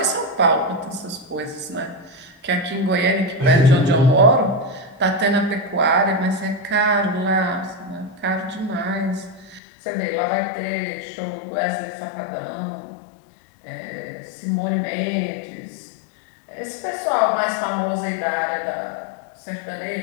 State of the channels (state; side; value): drops out; right; at 9.6 s